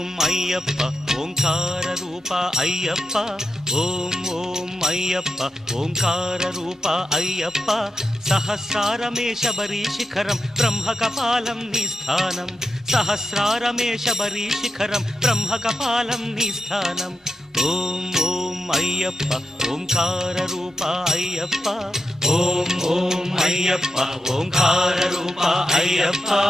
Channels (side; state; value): both; normal; correlation 0.87